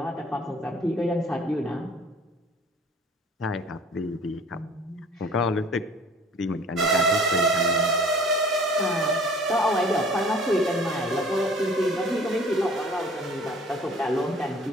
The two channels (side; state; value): both; normal; correlation 0.50